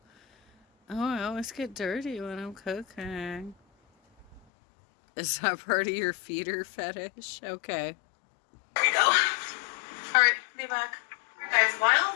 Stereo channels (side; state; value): right; drops out; at 4.4 s